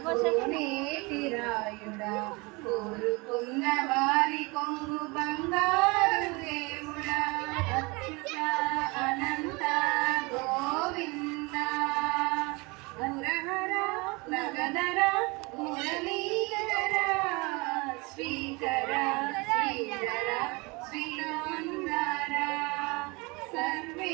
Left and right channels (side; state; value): left; quieter; 26.7 dB